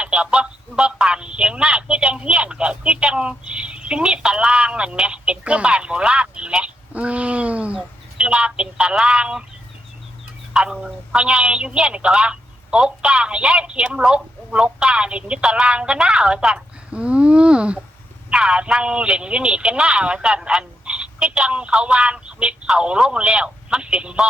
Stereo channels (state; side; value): normal; both; correlation 0.81